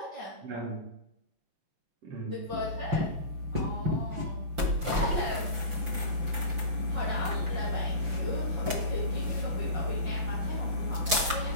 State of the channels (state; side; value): late; left; 5.9 ms